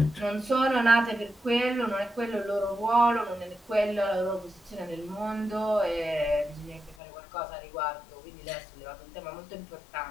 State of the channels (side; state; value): right; drops out; at 7.0 s